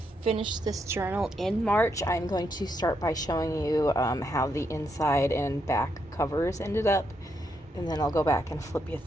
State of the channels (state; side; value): normal; both; correlation 0.79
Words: finished this journal in March, I'm going to start by showing you how the inside and back covers ended up, and then I'll go back and flip you